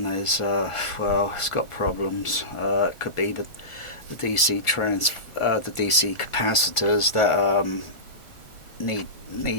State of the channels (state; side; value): late; right; 1.4 ms